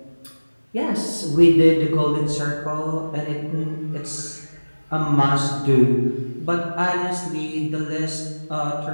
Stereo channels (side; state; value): both; inverted; correlation -1.00